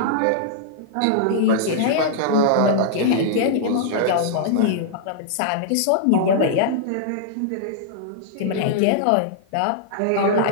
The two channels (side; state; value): both; different; correlation -0.02